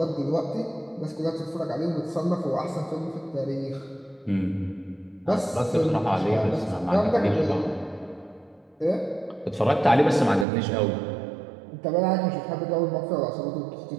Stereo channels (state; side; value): drops out; left; at 10.5 s